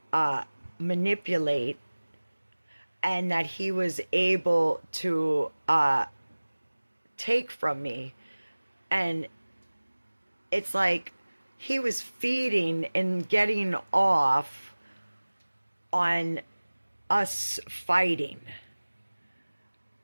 manipulate, and that he was able to take from me. And it's like he was feeding and getting off on us fighting.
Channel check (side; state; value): both; inverted; correlation -1.00